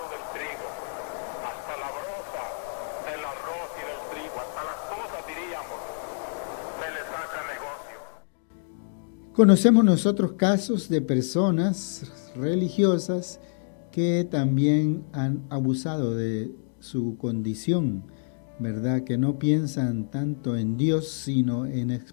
del trigo, hasta la broza del arroz y del trigo, hasta las cosas, diríamos, se les saca negocio. Conocemos nosotros casos de personas religiosas que también han abusado de su condición, ¿verdad? Que no piensan tanto en Dios, sino en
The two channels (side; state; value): right; silent; digital silence